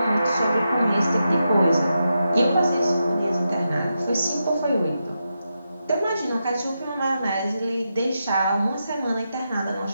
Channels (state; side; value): inverted; both; correlation -0.87